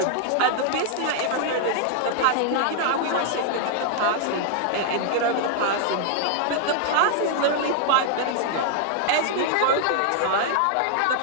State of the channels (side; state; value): both; different; correlation -0.01